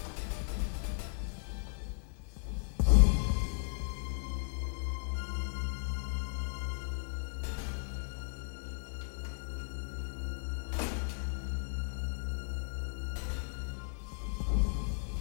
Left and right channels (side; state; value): right; silent; 54 dB below the other